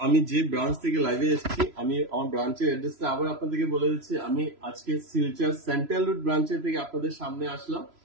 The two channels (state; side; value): late; left; 3.0 ms